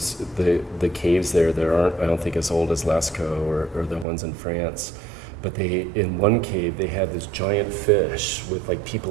the caves there. There aren't, I don't think, as old as Lascaux or the ones in France. But in one cave, they had this giant fish with like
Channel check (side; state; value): left; drops out; at 4.0 s